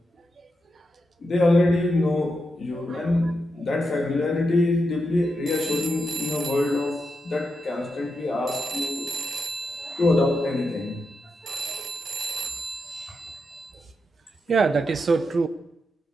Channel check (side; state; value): both; normal; correlation 0.85